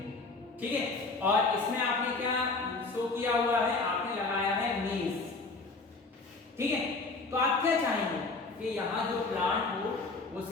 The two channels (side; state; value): right; quieter; 3.8 dB